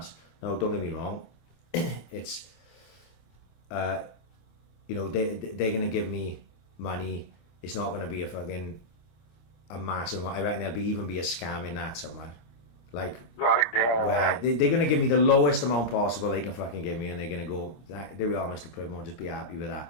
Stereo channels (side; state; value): right; late; 26 ms